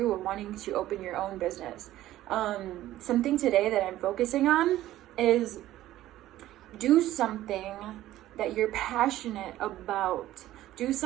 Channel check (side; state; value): left; quieter; 14.3 dB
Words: are wanting to open your own business. Something today that I'm focusing on is do something that you're passionate about. Do